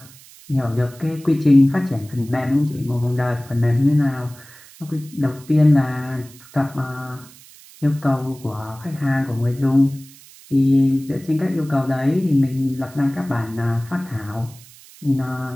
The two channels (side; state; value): right; noise; hiss, 22 dB below the sound